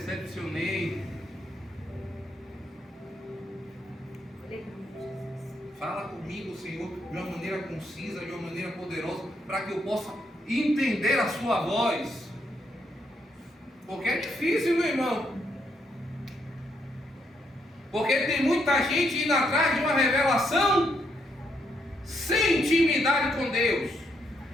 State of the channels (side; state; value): both; normal; correlation 0.76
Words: Fala comigo, Senhor, de uma maneira concisa, de uma maneira poderosa, para que eu possa entender a sua voz. Porque é difícil, meu irmão. Porque tem muita gente indo atrás de uma revelação sem intimidade com Deus.